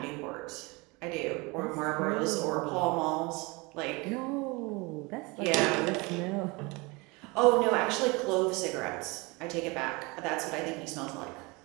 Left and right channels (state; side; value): quieter; left; 26.1 dB